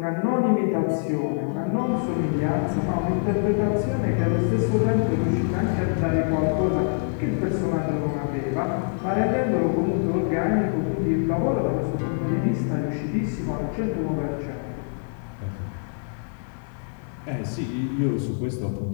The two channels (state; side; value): silent; right; digital silence